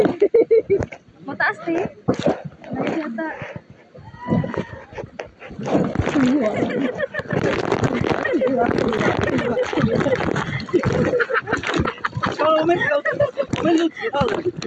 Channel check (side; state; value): both; identical; correlation 1.00